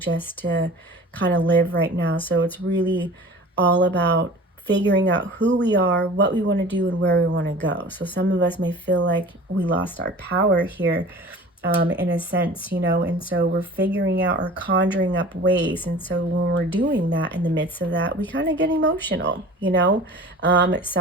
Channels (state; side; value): normal; both; correlation 0.41